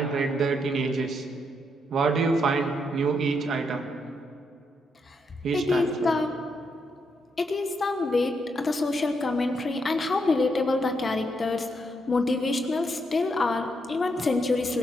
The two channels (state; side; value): normal; both; correlation 0.78